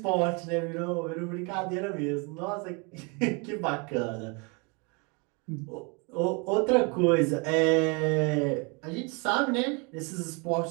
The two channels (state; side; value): quieter; left; 32.0 dB